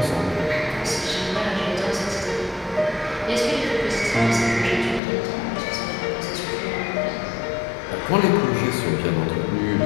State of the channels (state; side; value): drops out; right; at 5.0 s